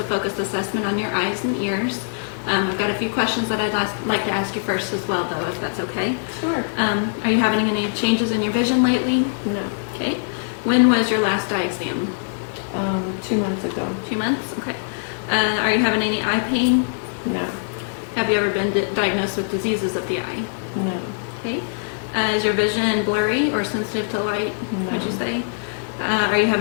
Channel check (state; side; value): silent; right; digital silence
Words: focused assessment on your eyes and ears. I've got a few questions that I'd like to ask you first as well, though, if that's okay. Sure. Are you having any changes in your vision lately? No. Okay. When was your last eye exam? 2 months ago. 2 months? Okay. Are you having any eye pain? No. Have you ever been diagnosed with diseases of the eye? No. Okay. Is your vision blurry or sensitive to light, No. would you say? Are you